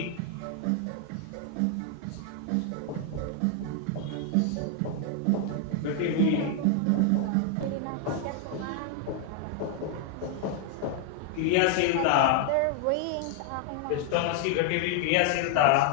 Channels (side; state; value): both; different; correlation 0.00